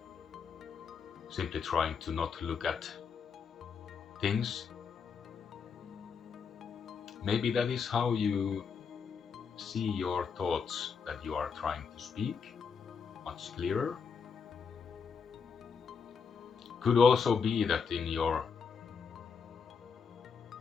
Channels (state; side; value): quieter; right; 5.9 dB